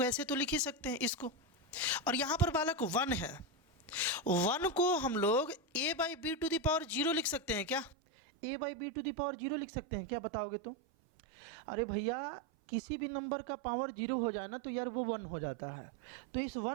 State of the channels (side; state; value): left; drops out; at 8.0 s